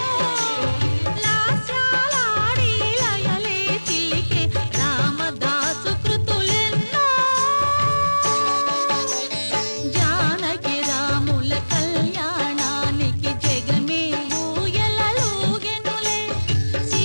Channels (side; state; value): both; inverted; correlation -1.00